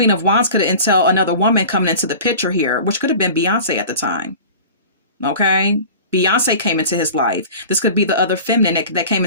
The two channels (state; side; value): inverted; both; correlation -0.39